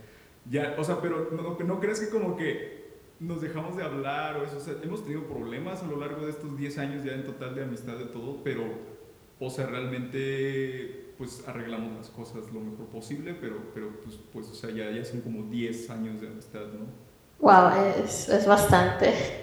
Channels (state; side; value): identical; both; correlation 1.00